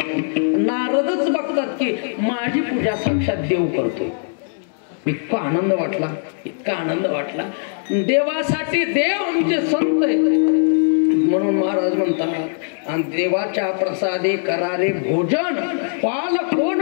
नारदच बघतात की माझी पूजा साक्षात देव करतोय. इतका आनंद वाटला, इतका आनंद वाटला. देवासाठी देव आमचे संत आहेत. म्हणून महाराज म्हणतात आणि देवाच्या प्रसादे करारे भोजन, पाल कोण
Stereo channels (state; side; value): silent; right; digital silence